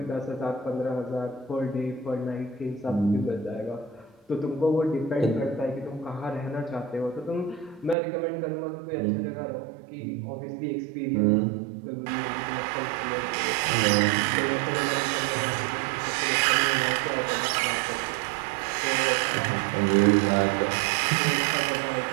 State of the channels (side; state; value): left; drops out; at 8.0 s